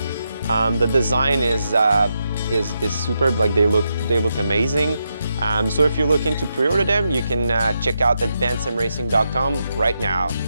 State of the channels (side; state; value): both; inverted; correlation -0.83